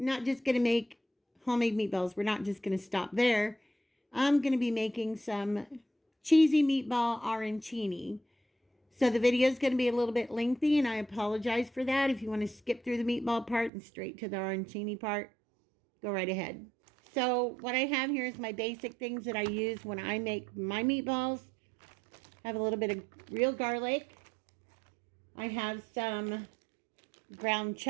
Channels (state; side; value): drops out; left; at 13.7 s